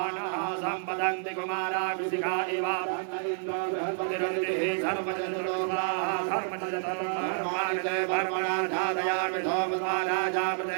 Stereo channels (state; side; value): silent; left; 58 dB below the other